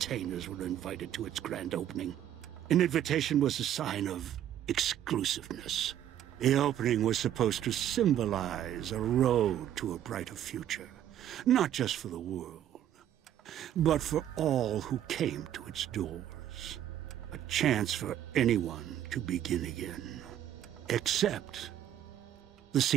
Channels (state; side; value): quieter; left; 11.0 dB